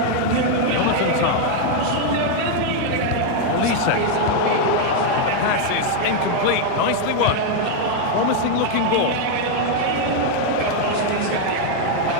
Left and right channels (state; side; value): different; both; correlation 0.00